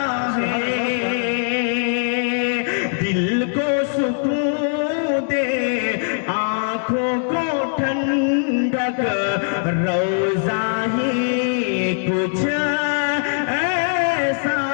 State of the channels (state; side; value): silent; right; digital silence